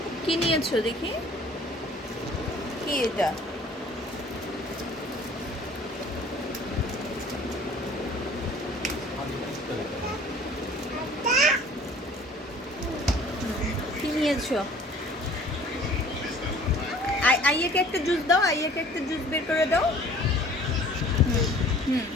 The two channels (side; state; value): both; normal; correlation 0.51